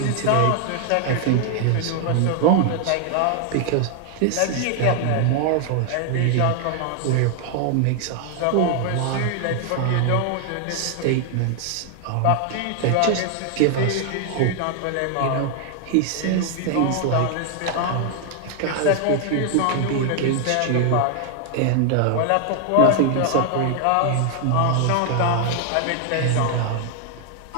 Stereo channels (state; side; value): different; both; correlation 0.00